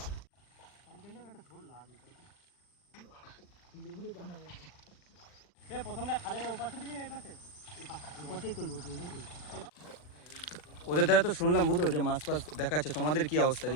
প্রথমটা খালের উপাসে দিবি না এই পাশে? উপাসেই তুলবো। ওদের দ্বারা তো শুনলাম বুধো যে মাছ ফাছ দেখাচ্ছে, তোমাদের কি অবস্থা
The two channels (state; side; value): late; right; 40 ms